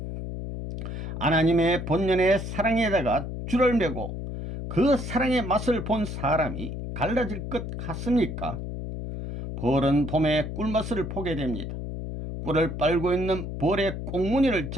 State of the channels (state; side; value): noise; left; hum, 6 dB below the sound